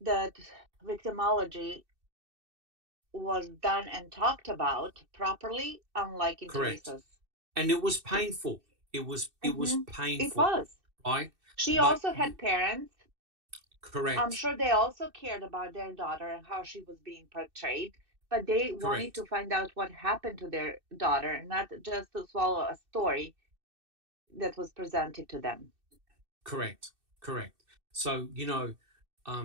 that victimology was done and talked about properly, unlike in Theresa's. And it was painful. It was painful. It was. Right? She also had parents. Correct. I'm sure they also cared about their daughter and how she was being portrayed, but they wanted to find out what happened to their daughter, not just to swallow a story that was presented to them. Correct. So,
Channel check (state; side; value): late; left; 2.6 ms